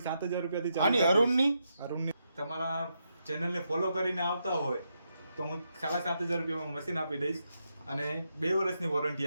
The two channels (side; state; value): both; inverted; correlation -0.82